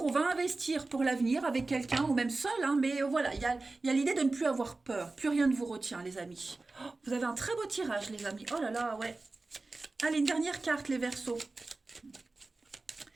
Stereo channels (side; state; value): left; quieter; 3.4 dB